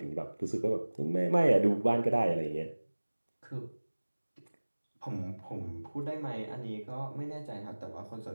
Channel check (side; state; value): both; inverted; correlation -1.00